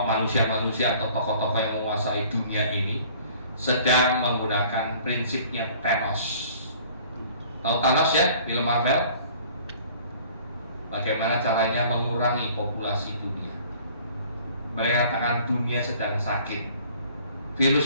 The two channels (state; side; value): inverted; both; correlation -0.52